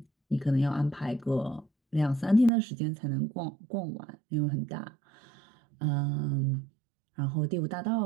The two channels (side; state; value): left; drops out; at 2.5 s